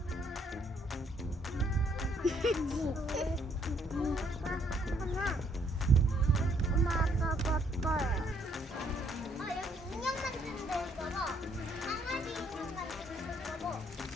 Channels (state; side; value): normal; both; correlation 0.68